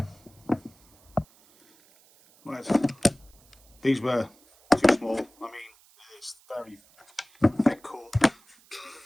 Right, these were too small. I mean, it's very thick core.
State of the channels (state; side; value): noise; right; hiss, 29 dB below the sound